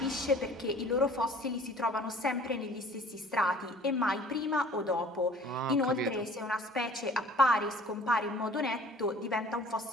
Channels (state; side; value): normal; both; correlation 0.50